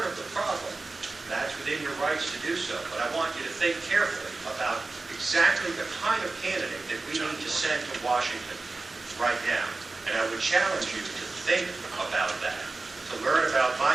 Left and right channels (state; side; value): quieter; left; 3.5 dB